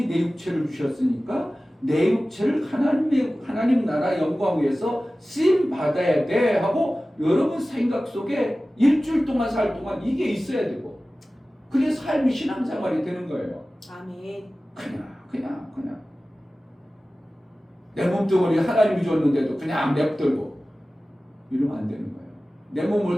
내 육체를 주셨으니까 내 육체를 하나님 나라 영광 위해서 쓰임 받아야 돼 하고 여러분 생각 속에 일주일 동안 살 동안 이게 있어야 되고 그게 삶이 신앙생활이 되는 거예요. 아멘. 그냥 내 몸뚱어리 하나님이 줬는데도 그냥 냅두고 이러면 안 되는 거예요. 내 몸을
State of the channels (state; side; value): normal; both; correlation 0.96